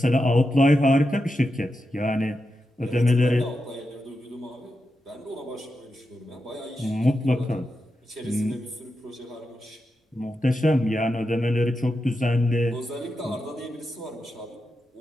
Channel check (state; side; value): normal; both; correlation 0.88